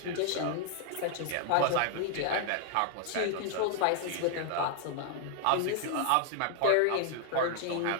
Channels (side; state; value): both; different; correlation 0.00